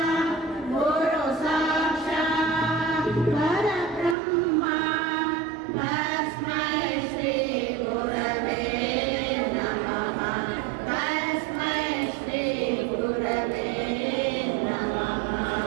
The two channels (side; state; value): left; drops out; at 4.2 s